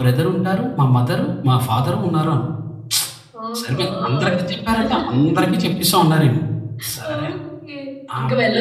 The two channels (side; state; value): both; identical; correlation 1.00